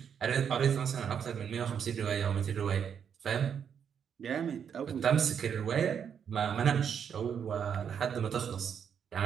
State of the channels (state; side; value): quieter; left; 7.7 dB